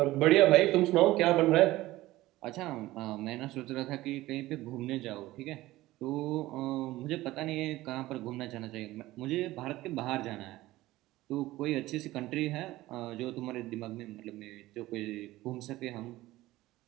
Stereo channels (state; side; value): quieter; left; 17.3 dB